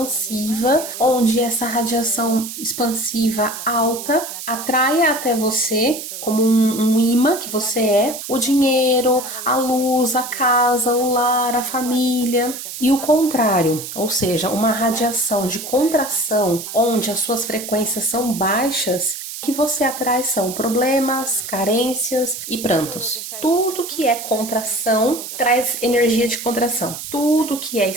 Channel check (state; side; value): noise; right; hiss, 9 dB below the sound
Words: onde essa radiação expansiva alta atraia até você como um imã que você é, o dinheiro, a luz, a casa, o lar, a família. E o contrário, ou seja, uma radiação de contração, onde as suas frequências são baixas, o que você atrai são problemas, carências e prantos. Tudo que é contração traz energia de contração. Tudo que é